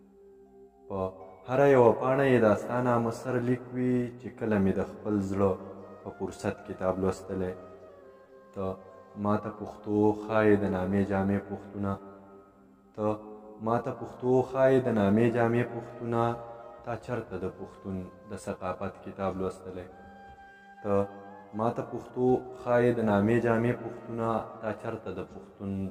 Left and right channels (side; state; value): both; identical; correlation 1.00